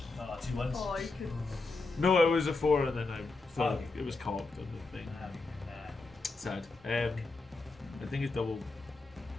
2 ones. Oh, you could. No, it was a 4, and then I thought it was cocked on the thing. Sad. I think it's double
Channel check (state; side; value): quieter; right; 3.5 dB